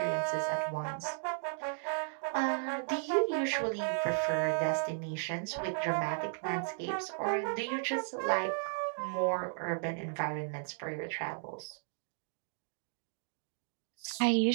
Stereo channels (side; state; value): left; silent; digital silence